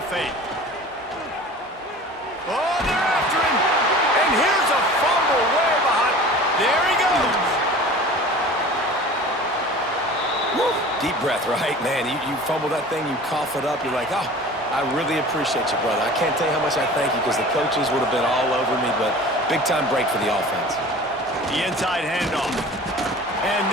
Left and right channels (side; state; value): both; normal; correlation 0.41